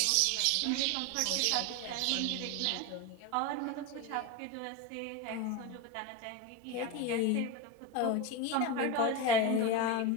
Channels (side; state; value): both; different; correlation 0.04